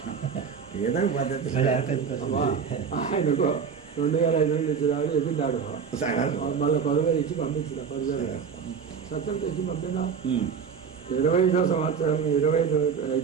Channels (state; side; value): quieter; left; 6.5 dB